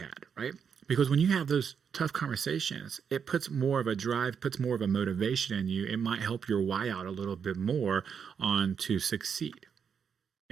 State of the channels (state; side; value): quieter; left; 7.0 dB